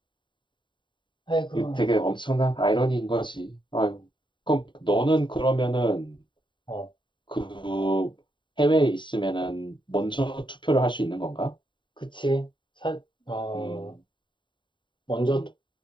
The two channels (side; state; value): right; late; 0.23 ms